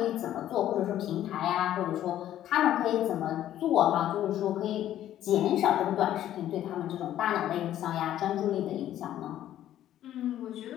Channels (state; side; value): quieter; right; 12.1 dB